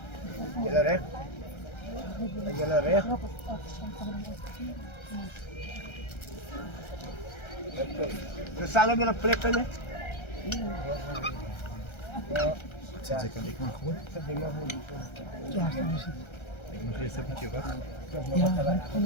Jullie recht? Jullie recht? We staan op een plek, hè? Zet ik aan, ik mag gewoon. Ik mag eerst een beetje wachten.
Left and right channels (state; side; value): late; right; 1.3 ms